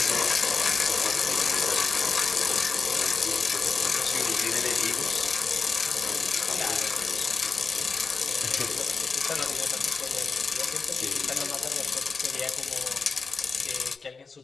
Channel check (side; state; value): right; quieter; 4.6 dB